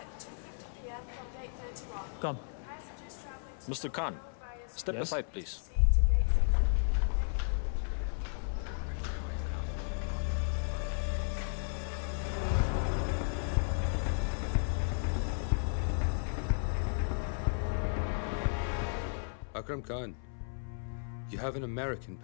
Come. Mr. Khan, step aside, please. Akram Khan, you have an American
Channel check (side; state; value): right; silent; 55 dB below the other